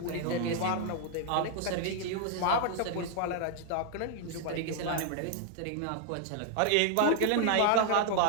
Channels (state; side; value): different; both; correlation 0.00